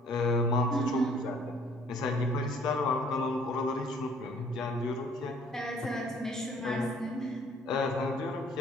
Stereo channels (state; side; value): normal; both; correlation 0.58